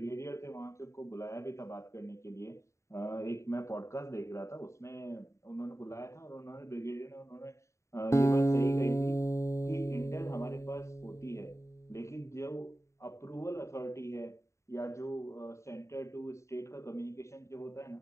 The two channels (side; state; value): right; late; 0.14 ms